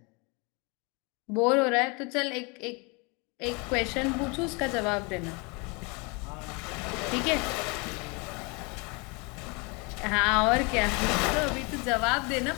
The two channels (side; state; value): right; quieter; 30.1 dB